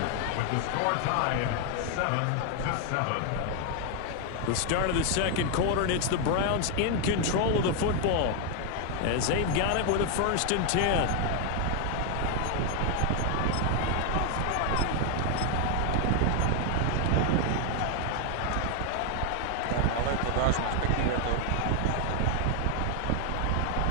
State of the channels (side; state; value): both; different; correlation 0.01